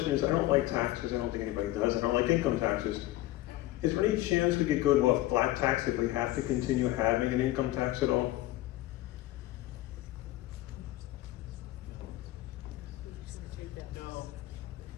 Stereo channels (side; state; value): right; quieter; 16.5 dB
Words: is, I don't like taxes. I don't think anybody does. I don't like income taxes. Is there any chance we could go to a flat tax if we have to continue having an income tax at all?